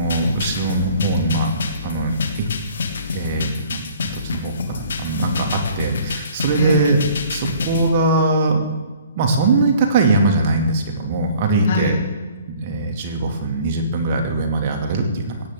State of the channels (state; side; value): inverted; both; correlation -0.53